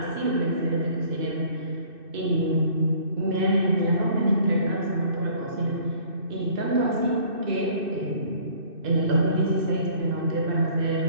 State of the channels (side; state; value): left; late; 2.6 ms